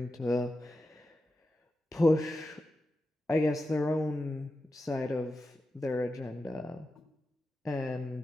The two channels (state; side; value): normal; both; correlation 0.91